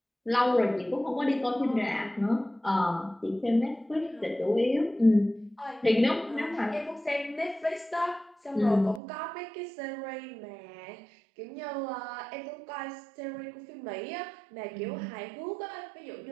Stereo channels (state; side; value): drops out; left; at 9.0 s